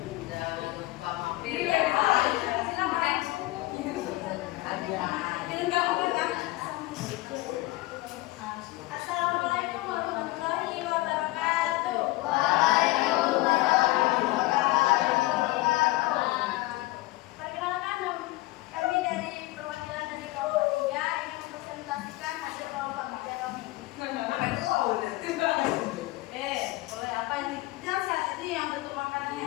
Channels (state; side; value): quieter; right; 19.7 dB